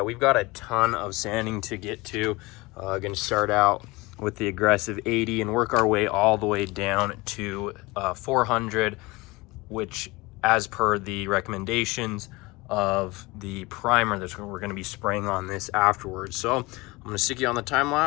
we've got a ton of sanding to get to. Going to start out with the aggressive 80 and work our way all the way down to 400, which as per the recommendations of the primer that we're going to be spraying on this afterwards. So I'm going to stick you on the time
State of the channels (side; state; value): right; quieter; 23.0 dB